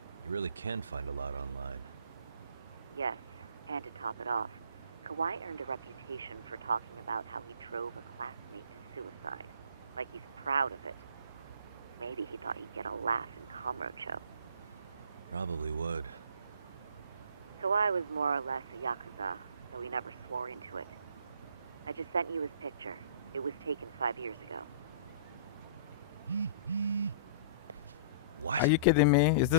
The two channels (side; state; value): both; inverted; correlation -0.45